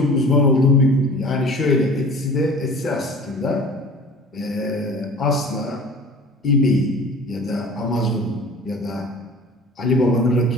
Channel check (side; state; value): both; normal; correlation 0.43